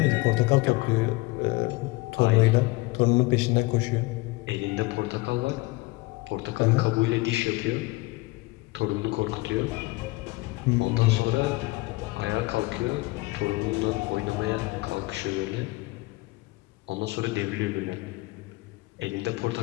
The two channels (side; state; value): right; quieter; 22.4 dB